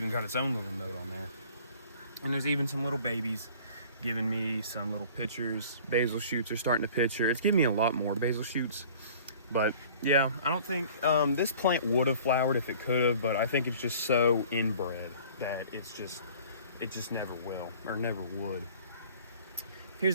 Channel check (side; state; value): both; inverted; correlation -0.48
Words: got its own little node on there. And there's even some little babies giving me some little pictures. Basil shoots are starting to picture. It's giving me a lot more basil shoots. But yeah, I don't think this plant would have flowered if it could have, but I think it's just so inbred that it just never will or never would.